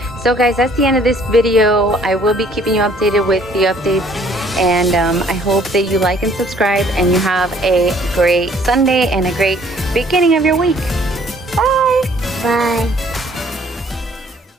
So guys, that's the end of this video. I will be keeping you updated with the updates, and I hope that you like and subscribe and you have a great Sunday and a great beginning of your week. Bye. Bye.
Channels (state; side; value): normal; both; correlation 0.59